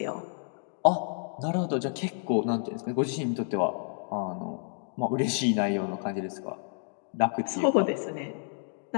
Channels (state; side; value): silent; right; digital silence